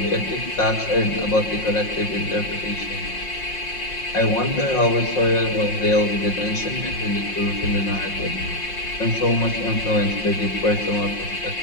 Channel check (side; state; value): right; late; 5.6 ms